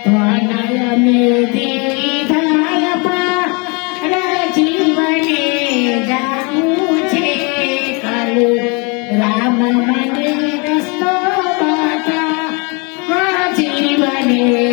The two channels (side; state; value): right; quieter; 31.1 dB